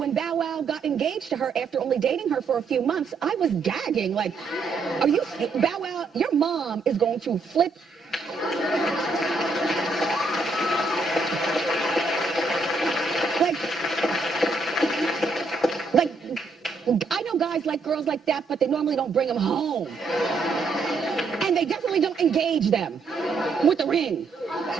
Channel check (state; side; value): quieter; left; 4.0 dB